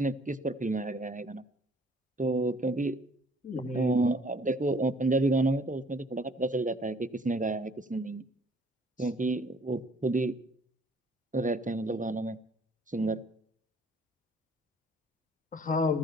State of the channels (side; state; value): both; normal; correlation 0.57